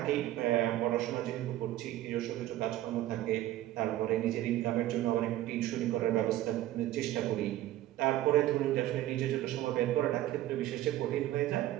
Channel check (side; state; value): left; quieter; 14.2 dB